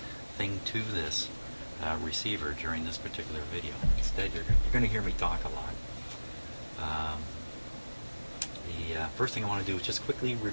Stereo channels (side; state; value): both; inverted; correlation -1.00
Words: to this receiver during this particular video. Instead, you're going to hear me talk a lot. The first thing I want to do is just quickly